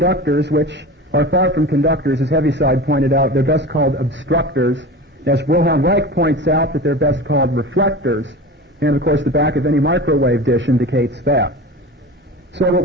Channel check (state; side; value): normal; both; correlation 0.32